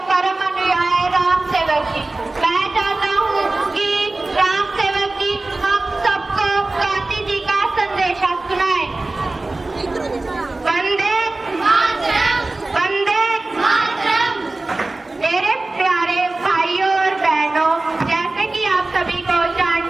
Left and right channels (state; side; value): quieter; left; 3.1 dB